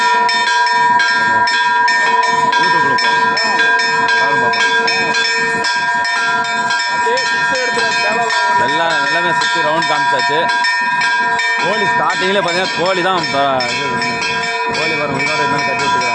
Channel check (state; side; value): identical; both; correlation 1.00